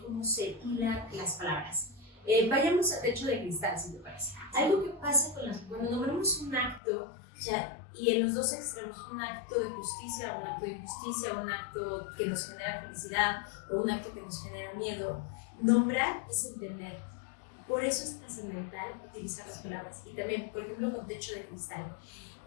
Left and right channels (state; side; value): drops out; right; at 6.8 s